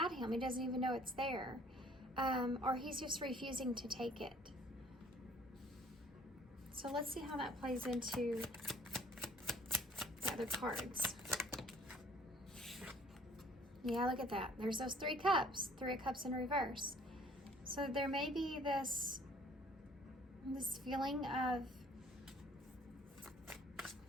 him. He doesn't even know it's there. Or he's just refusing to take it. So let's see how that plays into the other cards. Yeah, look at that. There's those 3 cups. 3 of Cups in reverse. So there may be this feeling of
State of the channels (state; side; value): normal; both; correlation 0.57